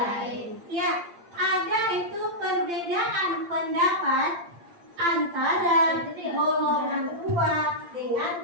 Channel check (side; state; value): left; late; 8.7 ms